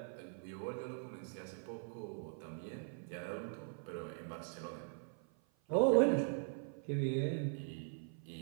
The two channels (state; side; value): silent; left; 50 dB below the other